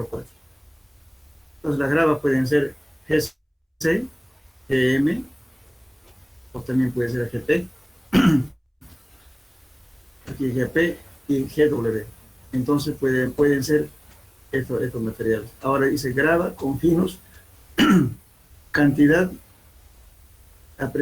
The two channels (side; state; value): both; identical; correlation 1.00